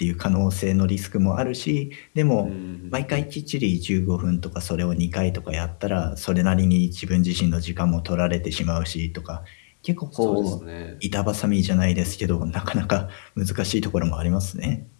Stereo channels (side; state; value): right; silent; 63 dB below the other